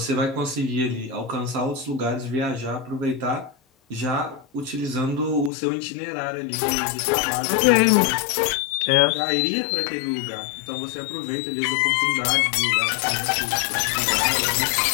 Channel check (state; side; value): drops out; right; at 5.5 s